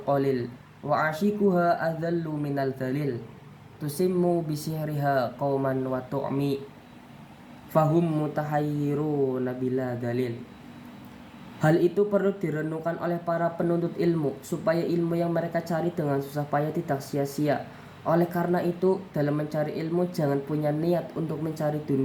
qalil wa ashikuha adallu minal dalil tusimmu bisihriha qauman wa tu'mi fahum mutahayyiruna bila dalil. Hal itu perlu direnungkan oleh para penuntut ilmu supaya ilmu yang mereka cari dengan susah payah tidak sia-sia. Oleh karena itu, dalam mencari ilmu jangan punya niat untuk mencari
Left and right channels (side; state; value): both; identical; correlation 1.00